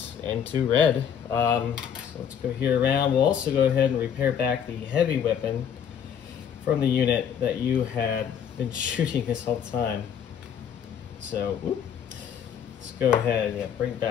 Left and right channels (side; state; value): right; quieter; 8.3 dB